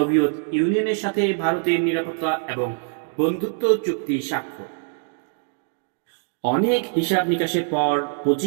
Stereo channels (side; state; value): left; silent; digital silence